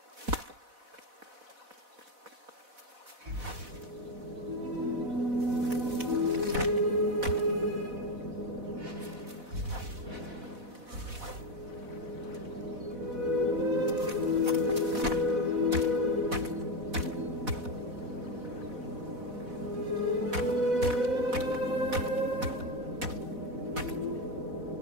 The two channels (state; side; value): late; left; 4.1 ms